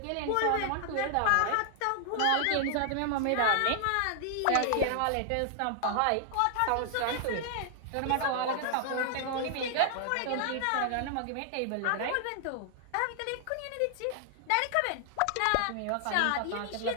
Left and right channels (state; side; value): different; both; correlation 0.00